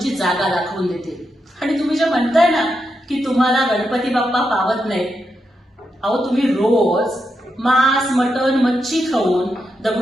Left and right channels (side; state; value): both; normal; correlation 0.85